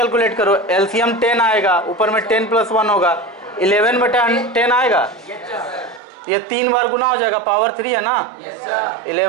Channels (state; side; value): drops out; left; at 6.0 s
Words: करो। एलसीएम 10 आएगा, ऊपर में 10 + 1 होगा, 11/10 आएगा। ये 3 बार गुना हो जाएगा, पावर 3 है ना।